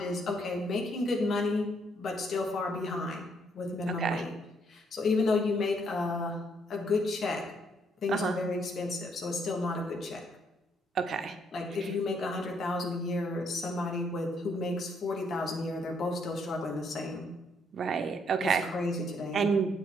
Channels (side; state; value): both; normal; correlation 0.71